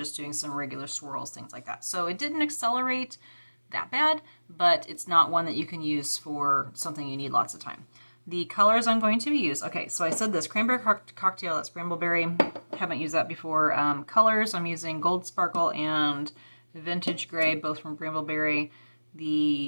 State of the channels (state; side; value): inverted; both; correlation -1.00